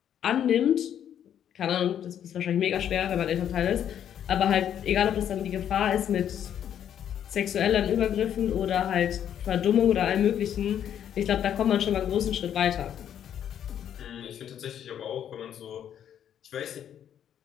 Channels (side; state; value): right; quieter; 9.7 dB